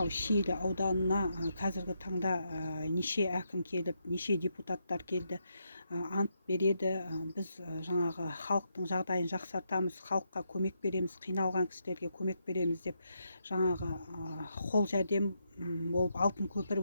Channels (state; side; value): inverted; both; correlation -0.80